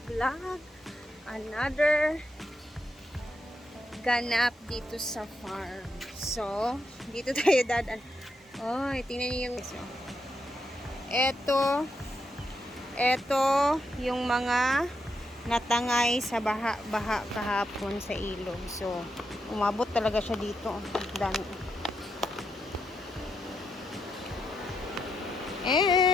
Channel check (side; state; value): both; normal; correlation 0.82